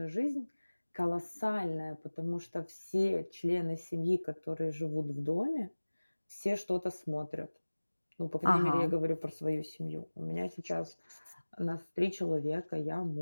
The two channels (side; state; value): both; inverted; correlation -1.00